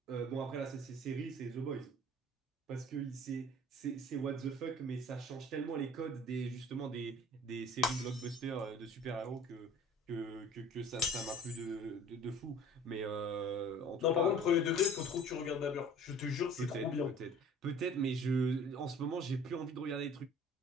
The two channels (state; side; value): normal; both; correlation 0.48